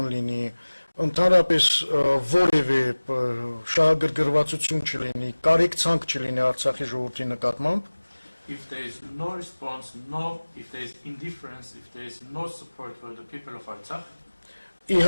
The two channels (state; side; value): inverted; both; correlation -1.00